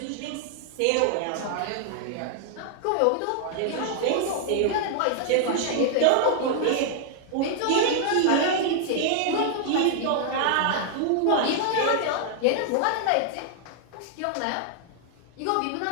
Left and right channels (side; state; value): both; different; correlation -0.01